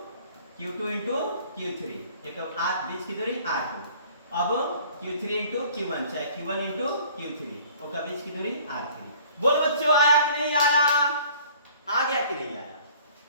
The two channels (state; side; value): inverted; both; correlation -0.52